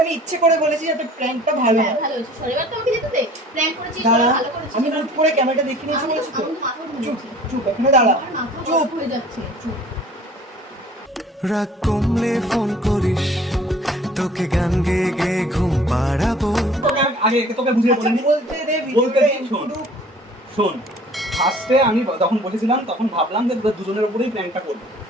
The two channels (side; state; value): both; normal; correlation 0.50